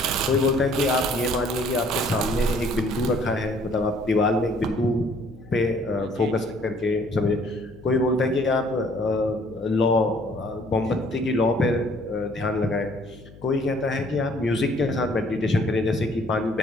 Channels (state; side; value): noise; left; hum, 21 dB below the sound